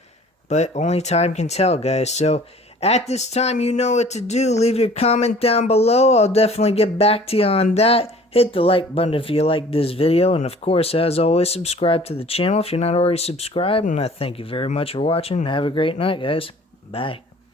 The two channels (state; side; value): normal; both; correlation 0.50